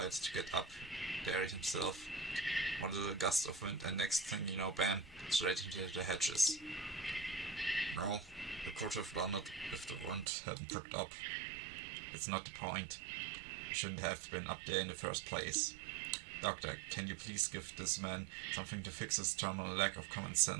to get up there himself. One little gust of wind and next thing you know, bam, straight into the hedges. No, I could have done it if the wind hadn't picked up. It's not the point. I shouldn't have been up there in the first place. Doctor, can you please give this man something to fix his terminal lack of common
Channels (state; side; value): drops out; left; at 10.2 s